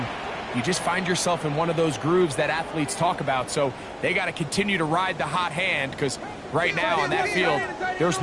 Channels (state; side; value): identical; both; correlation 1.00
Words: you just find yourself in one of those grooves that athletes talk about. So they got to continue to ride the hot hand, because right now on that field, there's